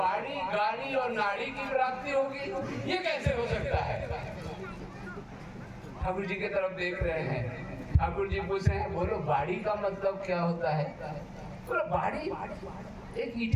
गाड़ी और नाड़ी की प्राप्ति होगी, ये कैसे हो सकता है? ठाकुर जी की तरफ देख रहे हैं। ठाकुर जी पूछ रहे हैं, बोलो बाड़ी का मतलब क्या होता है? बोलो बाड़ी एक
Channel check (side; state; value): both; identical; correlation 1.00